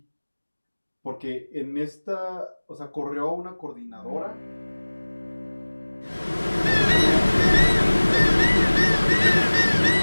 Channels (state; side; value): inverted; both; correlation -1.00